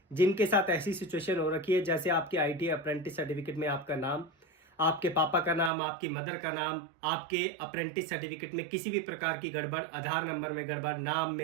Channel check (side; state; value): left; drops out; at 5.7 s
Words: जिनके साथ ऐसी सिचुएशन हो रखी है, जैसे आपके आईटीआई अप्रेंटिस सर्टिफिकेट में आपका नाम, आपके पापा का नाम, आपकी मदर का नाम, आपके अप्रेंटिस सर्टिफिकेट में किसी भी प्रकार की गड़बड़, आधार नंबर में गड़बड़, नाम